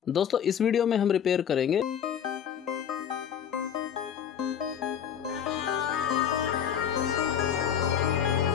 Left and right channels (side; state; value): right; quieter; 8.7 dB